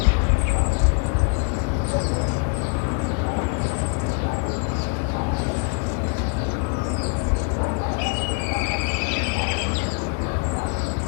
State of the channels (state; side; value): quieter; right; 34.3 dB